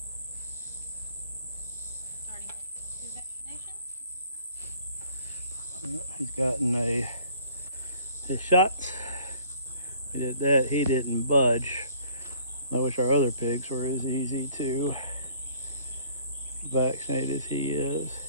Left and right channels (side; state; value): both; inverted; correlation -0.56